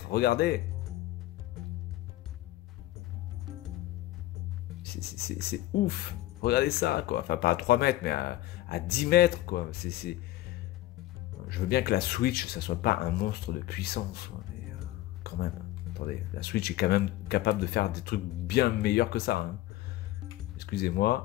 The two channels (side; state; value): right; quieter; 15.9 dB